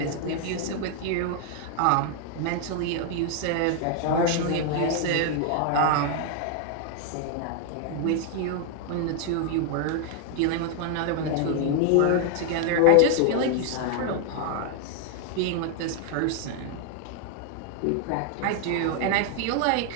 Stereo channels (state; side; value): different; both; correlation 0.00